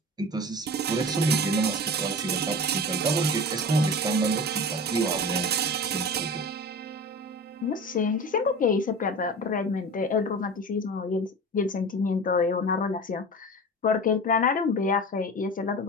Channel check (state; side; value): normal; both; correlation 0.33